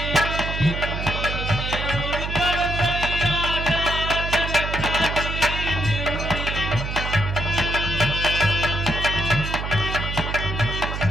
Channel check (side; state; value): right; noise; hum, 4 dB below the sound